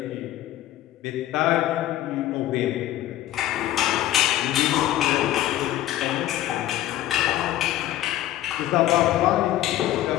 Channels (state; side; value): quieter; right; 13.9 dB